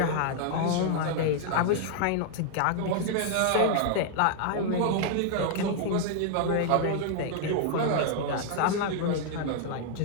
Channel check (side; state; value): both; different; correlation 0.00